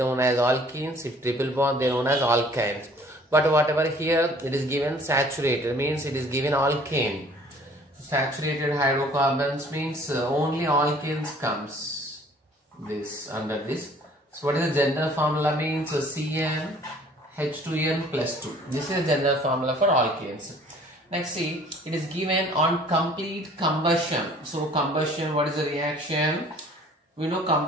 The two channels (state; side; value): normal; both; correlation 0.54